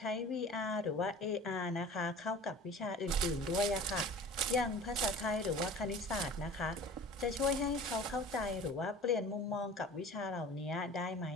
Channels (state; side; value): normal; both; correlation 0.41